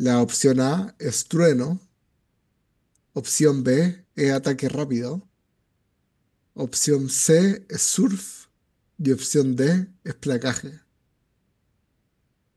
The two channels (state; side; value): identical; both; correlation 1.00